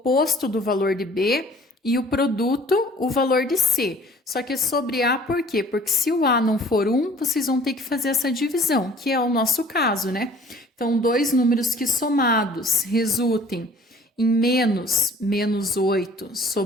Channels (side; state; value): both; normal; correlation 0.52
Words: do valor de B e o produto, o valor de C. Só que é sobre A por quê? Porque se o A não for 1, vocês vão ter que fazer essa divisão, que é o nosso caso, né? Então, dois números que somados resultem em menos 8